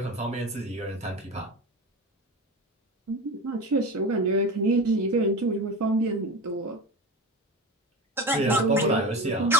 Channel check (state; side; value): normal; both; correlation 0.27